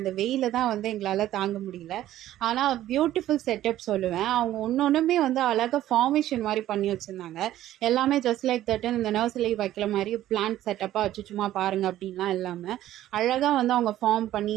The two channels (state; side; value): quieter; left; 13.4 dB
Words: வெயில தான் வந்து எங்களால் தாங்க முடியல. ஆனால் பியூட்டிஃபுல் செட்டப் சொல்லுவேன். அவங்க ஒன்றுமே வந்து அழகாக ஃபார்மேஷன் மாதிரி பண்ணி வச்சுருந்தாங்க. எல்லாமே ஜஸ்ட் லைக் தட்டுன்னு இந்த நர்சரி வைக்கிற மாதிரி பிளான்ட் செட்டப்பாக வச்சு சும்மா பாருங்கள் அப்படின்லாம் இல்லாமல் அழகாக வந்து அவங்க ஃபார்ம் பண்ணி